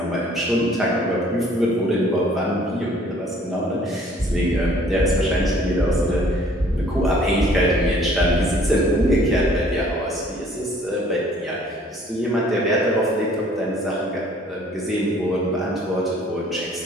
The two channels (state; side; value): normal; both; correlation 0.56